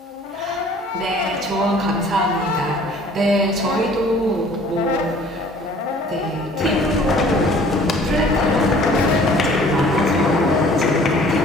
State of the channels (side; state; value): both; normal; correlation 0.52